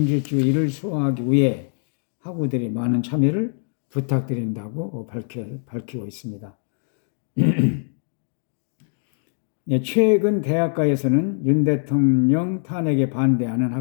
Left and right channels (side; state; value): right; silent; digital silence